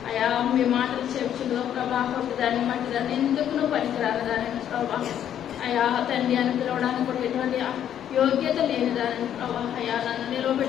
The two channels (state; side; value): quieter; right; 10.1 dB